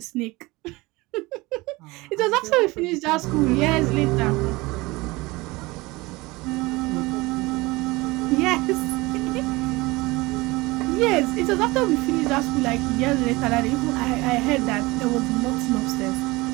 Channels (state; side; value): quieter; left; 22.2 dB